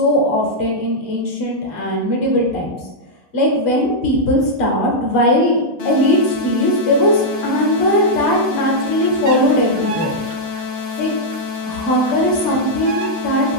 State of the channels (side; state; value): right; late; 2.2 ms